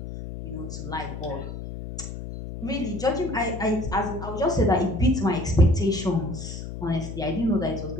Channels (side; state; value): left; noise; hum, 8 dB below the sound